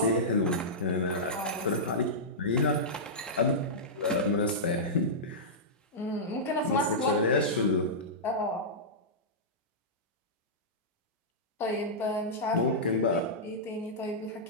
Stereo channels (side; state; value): both; normal; correlation -0.13